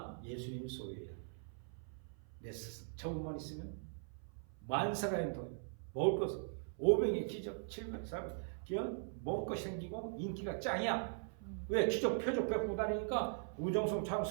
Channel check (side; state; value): left; silent; 51 dB below the other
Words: 예수님 소유예요. 내 스승. 저것만 있으면 만사가인 돈, 먹을 것, 500의 기적, 700, 400, 먹을 것이 생기고 인기가 짱이야. 왜? 기적, 표적 베푸고 다니니까 우정성처럼